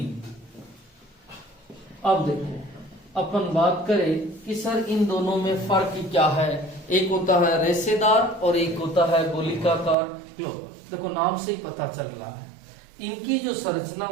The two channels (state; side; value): drops out; left; at 10.0 s